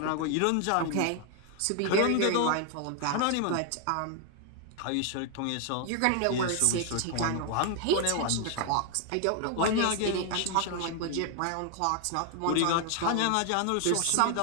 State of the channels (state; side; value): different; both; correlation 0.00